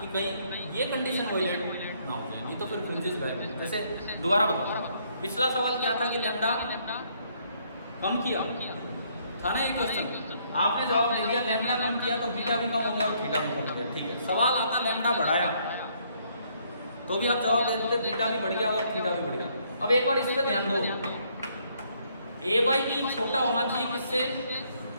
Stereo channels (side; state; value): both; inverted; correlation -0.68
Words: कहीं ये कंडीशन वायलेट ना हो जाए, नहीं तो फिर फ्रिंजेस गायब। जैसे दोबारा बताओ, पिछला सवाल क्या था कि लैम्डा कम किया था ना, एक क्वेश्चन आपने जवाब दे दिया लैम्डा कम किया तो बीटा भी कम हो गया और थीटा भी कम हो गया, ठीक है। सवाल आता लैम्डा बढ़ाया तो भी आप जवाब दे देते बीटा भी बढ़ गया और थीटा भी बढ़ गया। अब एक बार इस पे ध्यान दो, ए बाई बी छोटा होना चाहिए किससे,